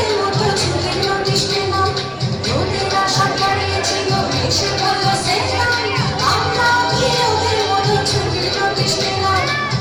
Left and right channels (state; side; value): identical; both; correlation 1.00